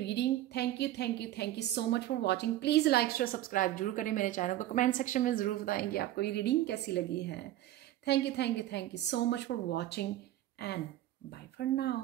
Thank you, thank you, thank you so much for watching. Please like share subscribe जरूर करें मेरे चैनल को। कमेंट सेक्शन में ज़रूर बताएंगे आपको ये रीडिंग कैसी लगी है। Thank you, thank you, thank you so much for watching, and bye for now.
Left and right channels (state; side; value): quieter; left; 14.0 dB